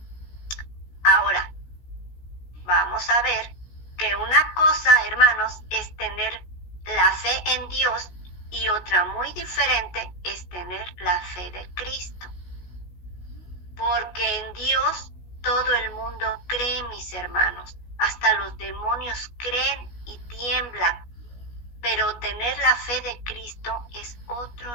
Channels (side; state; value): right; late; 17 ms